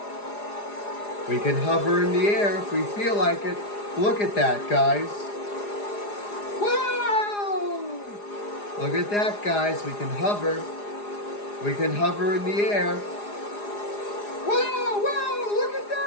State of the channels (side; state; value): right; late; 4.9 ms